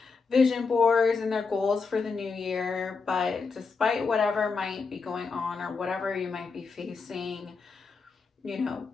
vision boards and their goals for the new year, but despite whatever might be going on or whatever you might be facing, you know,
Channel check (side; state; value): right; quieter; 4.8 dB